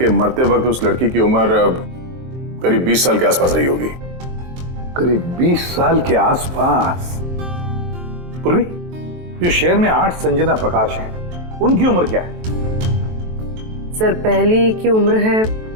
मरते वक्त उस लड़की की उम्र करीब 20 साल के आसपास रही होगी। करीब 20 साल के आसपास। पूर्वी, जो शहर में 8 संजना प्रकाश हैं, उनकी उम्र क्या है? सर, पहली की उम्र है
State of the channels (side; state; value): left; late; 23 ms